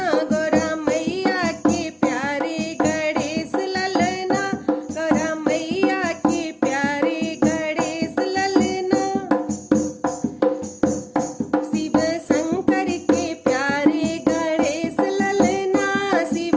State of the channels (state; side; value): identical; both; correlation 1.00